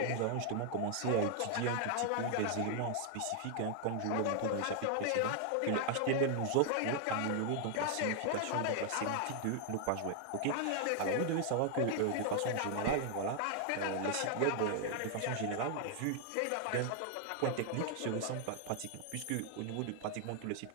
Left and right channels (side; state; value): both; different; correlation 0.00